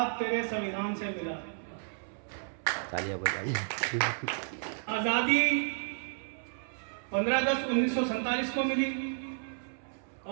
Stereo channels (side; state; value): left; silent; 56 dB below the other